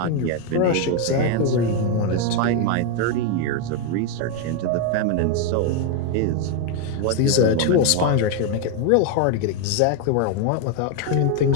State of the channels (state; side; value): different; both; correlation 0.01